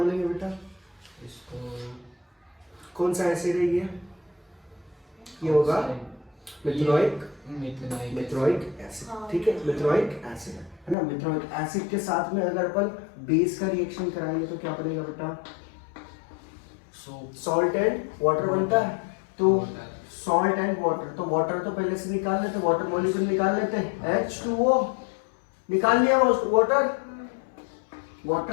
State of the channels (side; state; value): right; drops out; at 11.0 s